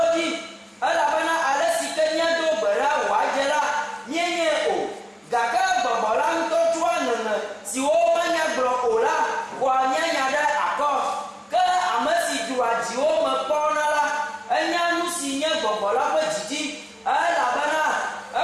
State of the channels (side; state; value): both; identical; correlation 1.00